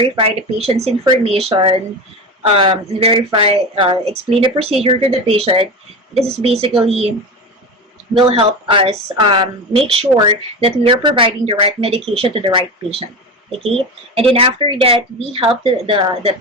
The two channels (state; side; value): normal; both; correlation 0.24